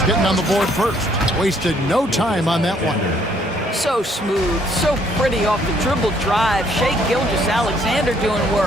getting on the board first. Wasted no time on that one. So smooth, so pretty off the dribble drive. Shai Gilgeous-Alexander doing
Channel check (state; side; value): normal; both; correlation 0.66